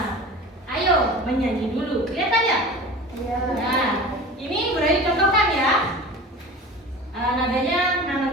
ayo menyanyi dulu. Kelihatan ya? Iya. Nah, ini budaya contohkan ya. Nadanya nanam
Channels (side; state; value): both; normal; correlation 0.37